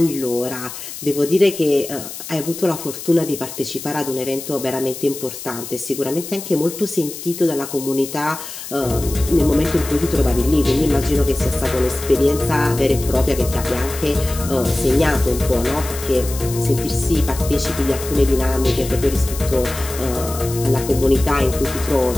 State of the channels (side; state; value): left; noise; hiss, 11 dB below the sound